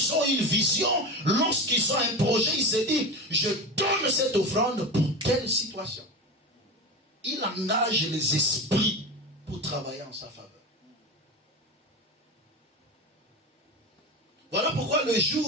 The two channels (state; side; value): normal; both; correlation 0.23